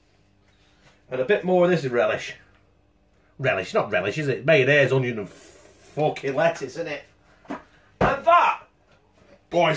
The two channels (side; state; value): both; identical; correlation 1.00